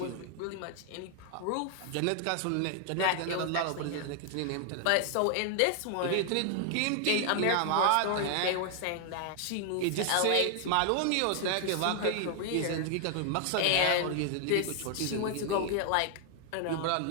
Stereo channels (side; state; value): both; different; correlation 0.00